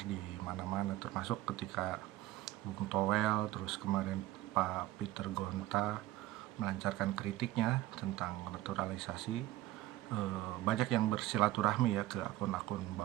di mana-mana, termasuk ketika Bung Toel, terus kemarin Pak Peter Gonta melancarkan kritiknya tentang naturalisasi. Banyak yang bersilaturahmi ya ke akun-akun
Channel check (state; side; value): quieter; left; 15.8 dB